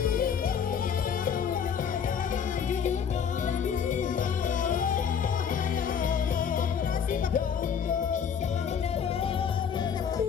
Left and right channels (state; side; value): quieter; right; 7.4 dB